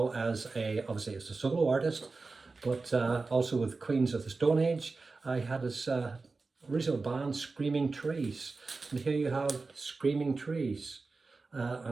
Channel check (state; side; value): quieter; left; 3.9 dB